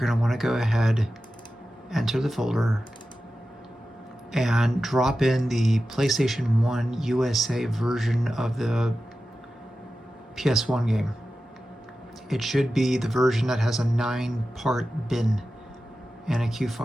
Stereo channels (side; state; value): both; normal; correlation 0.93